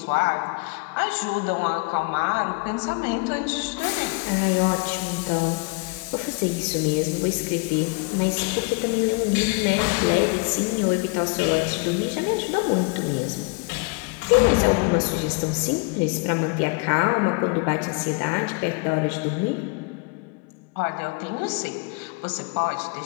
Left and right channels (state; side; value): quieter; right; 30.4 dB